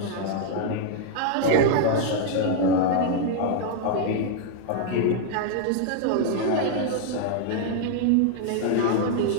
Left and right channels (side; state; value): both; different; correlation -0.01